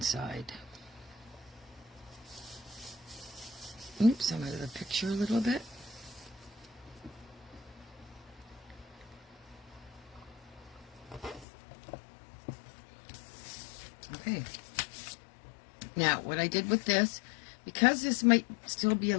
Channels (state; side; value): drops out; right; at 11.5 s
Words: Oops, I'm out of the picture a little bit. Okay. Now, what I did with this, because this might still be a